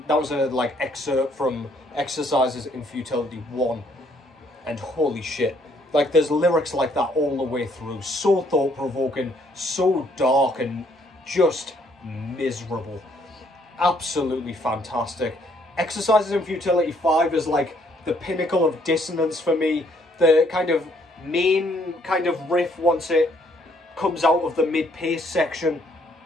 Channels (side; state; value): both; normal; correlation 0.67